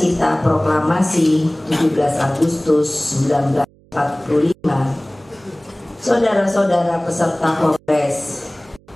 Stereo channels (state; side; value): noise; right; hum, 29 dB below the sound